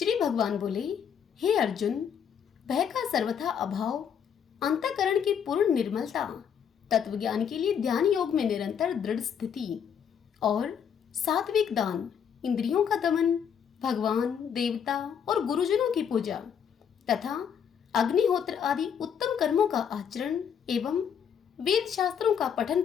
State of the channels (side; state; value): right; quieter; 7.9 dB